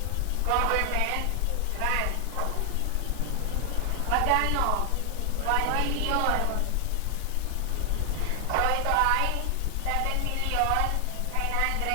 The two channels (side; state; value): both; different; correlation 0.00